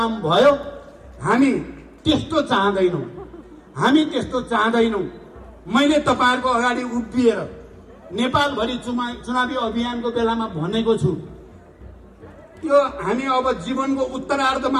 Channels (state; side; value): identical; both; correlation 1.00